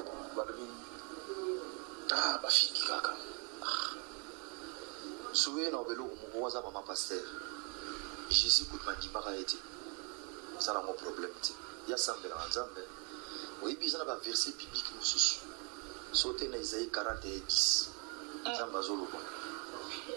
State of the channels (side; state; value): left; quieter; 35.2 dB